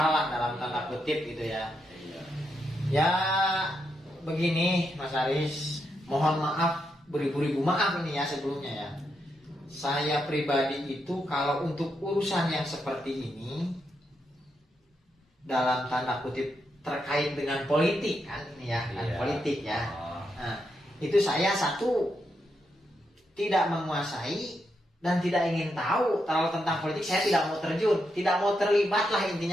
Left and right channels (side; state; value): both; normal; correlation 0.82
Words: lah dalam tanda kutip gitu ya. Ya begini Mas Aris, mohon maaf, beribu-ribu maaf ini ya sebelumnya ya. Saya pribadi itu kalau untuk urusan yang seperti ini dalam tanda kutip terkait dengan politik kan ini ya, kan politik ya. Nah, itu saya satu tidak menguasai dan tidak ingin tahu terlalu tentang politik. Saya tidak mau terjun, tidak mau terlibat lah